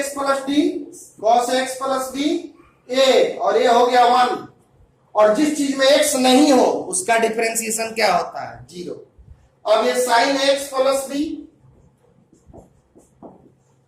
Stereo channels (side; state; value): both; identical; correlation 1.00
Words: plus d cos x plus b a, और ये हो गया 1, और जिस चीज में एक्स नहीं हो उसका डिफरेंशिएशन क्या होता है? 0। अब ये sine x plus b